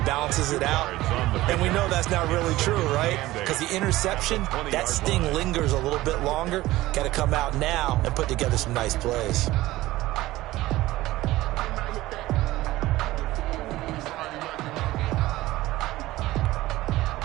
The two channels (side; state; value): left; quieter; 17.3 dB